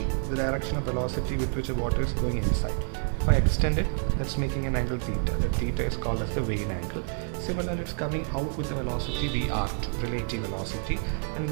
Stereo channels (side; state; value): left; silent; 59 dB below the other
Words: direction of velocity with which the water is going inside. If I extend it, that's making an angle theta. The theta is called as the Vane angle. Similarly, it's coming out with a velocity VR2, relative velocity, and